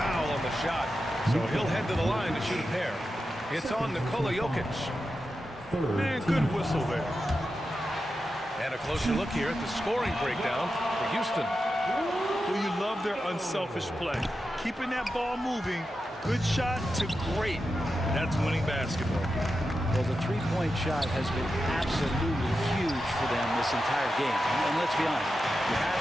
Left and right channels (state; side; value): normal; both; correlation 0.90